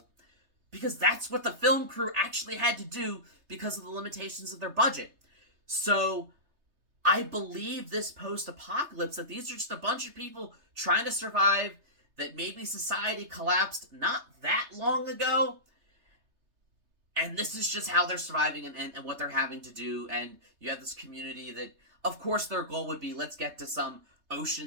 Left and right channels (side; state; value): left; late; 3.3 ms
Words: because that's what the film crew actually had to do because of the limitations of their budget. So I believe this post-apocalypse, that these are just a bunch of people trying to survive, that maybe society collapsed not that long ago, and this is just how they're surviving, and what they're having to do. And you have this community that, of course, their goal would be, let's get to some